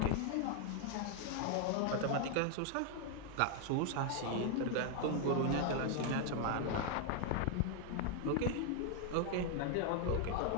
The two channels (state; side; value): different; both; correlation 0.01